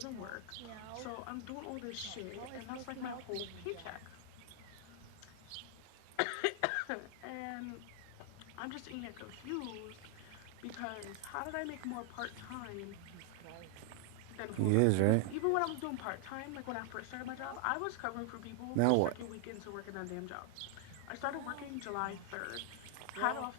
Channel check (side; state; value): both; different; correlation 0.00